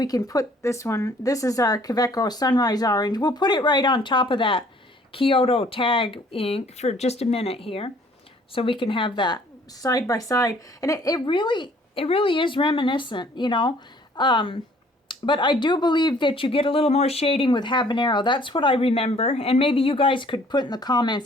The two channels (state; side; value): normal; both; correlation 0.58